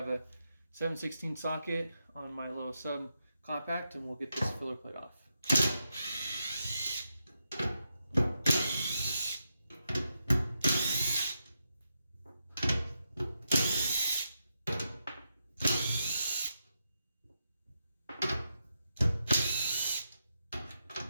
a 7/16 socket on my little sub compact, and we'll get this filler plate off.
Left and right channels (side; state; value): both; inverted; correlation -0.85